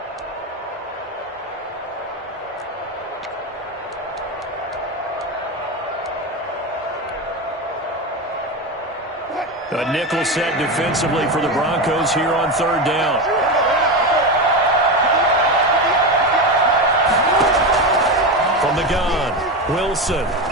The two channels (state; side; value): normal; both; correlation 0.18